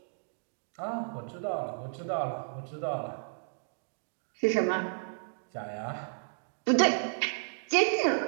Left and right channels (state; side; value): silent; left; digital silence